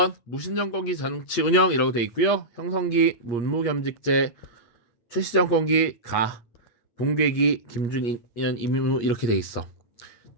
무신정권기 정치 운영이라고 되어 있고요. 형성기 문무겸직제, 최씨정권기 가, 붕괴기 김준년 임무 이렇게 되어 있어.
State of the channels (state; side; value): late; right; 8.5 ms